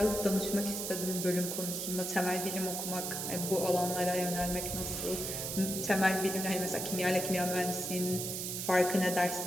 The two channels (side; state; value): right; noise; hiss, 3 dB below the sound